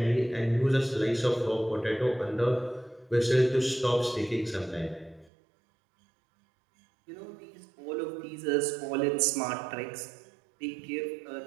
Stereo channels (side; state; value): left; drops out; at 5.3 s